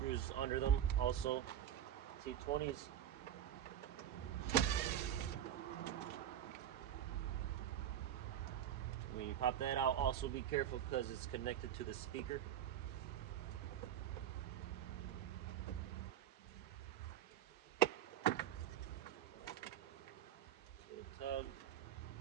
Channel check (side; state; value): left; quieter; 10.3 dB